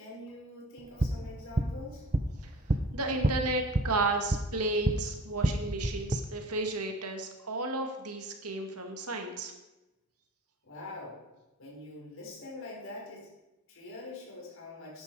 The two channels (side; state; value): both; normal; correlation 0.45